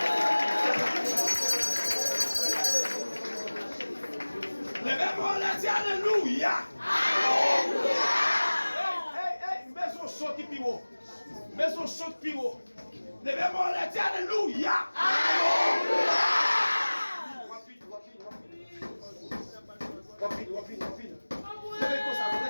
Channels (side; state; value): both; inverted; correlation -1.00